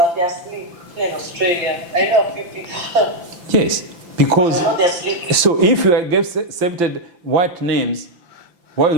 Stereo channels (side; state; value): left; late; 5.8 ms